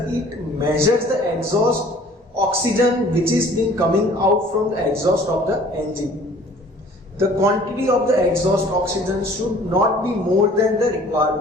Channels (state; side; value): normal; both; correlation 0.52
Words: it measures the exhaust oxygen which is being coming out from the exhaust of the engine. The quantity of the exhaust oxygen should not be more than the